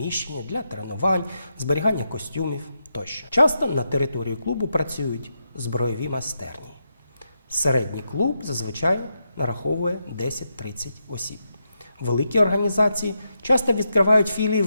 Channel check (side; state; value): both; inverted; correlation -0.84